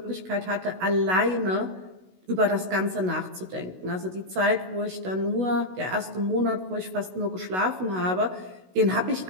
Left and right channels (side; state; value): left; late; 16 ms